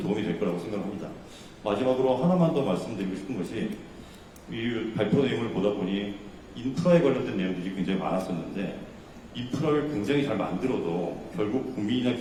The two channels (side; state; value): both; identical; correlation 1.00